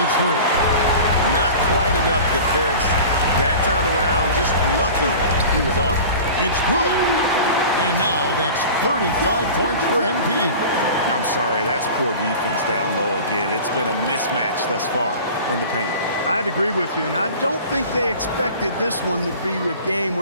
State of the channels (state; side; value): inverted; both; correlation -0.38